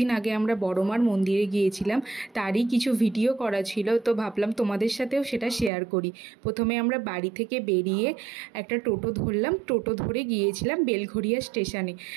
আগে আমরা বড়মার মন্দিরে গিয়েছিলাম, তারই কিছু ভিডিও করা ছিল, তো ভাবলাম তোমাদের সাথেও সেটা শেয়ার করি। প্রথমে আমরা বাড়ি থেকে বেরিয়ে একটা টোটো ধরলাম, টোটো ধরে গিয়েছিলাম বেলঘরিয়া স্টেশনে।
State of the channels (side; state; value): left; drops out; at 5.7 s